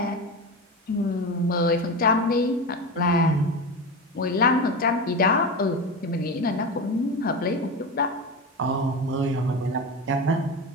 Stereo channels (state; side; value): normal; both; correlation 0.23